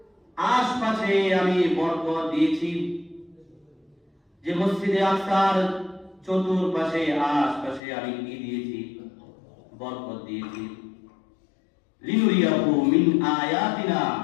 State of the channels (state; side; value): drops out; right; at 7.8 s